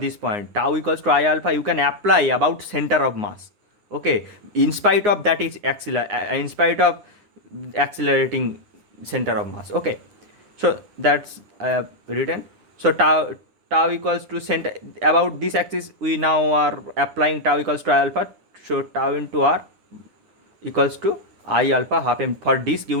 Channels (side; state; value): left; late; 9.8 ms